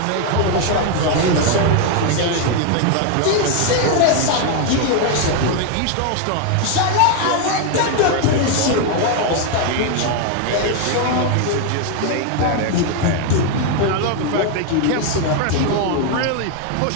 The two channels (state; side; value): different; both; correlation 0.01